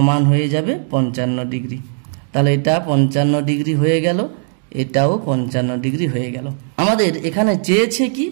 হয়ে যাবে 55 ডিগ্রি। তাহলে এটা 55 ডিগ্রি হয়ে গেল, এটাও 55 ডিগ্রি হয়ে গেল। আমাদের এখানে চেয়েছে কি,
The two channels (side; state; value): left; silent; digital silence